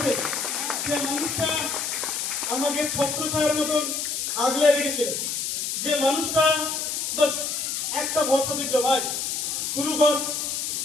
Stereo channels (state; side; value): noise; left; hiss, 2 dB below the sound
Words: যে মানুষটা আমাকে ছত্র ছায়ার মতন আগলে রেখেছে যে মানুষটা বাস একটা ভরসা দিল ভাই শুরু কর